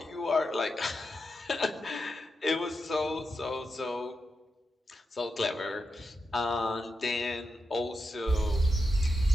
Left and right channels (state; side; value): normal; both; correlation 0.87